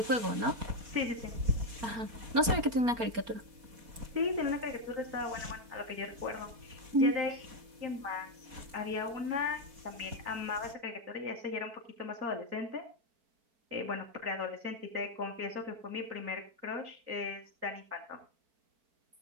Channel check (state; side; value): late; left; 4.3 ms